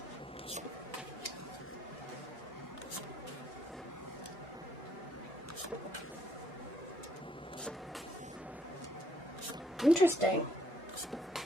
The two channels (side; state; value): both; normal; correlation 0.70